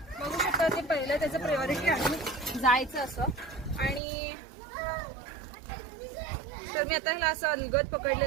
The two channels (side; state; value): left; drops out; at 4.0 s